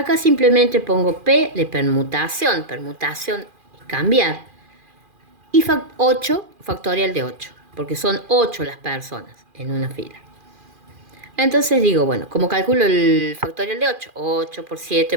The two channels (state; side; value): late; left; 2.4 ms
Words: simplemente pongo P de permutación. Permutación es cambiar. Y 8, factorial de 8, porque son 8 las personas en una fila. Entonces digo, bueno, ¿cómo calculo el factorial de 8? 8 por 7,